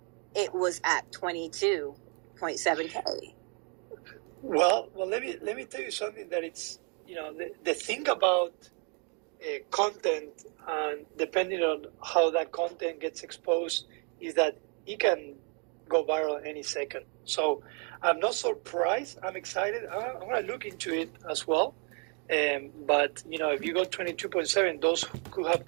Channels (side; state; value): left; quieter; 37.7 dB